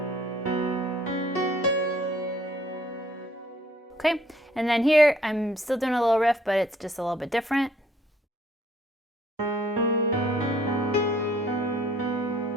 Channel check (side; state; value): both; normal; correlation 0.60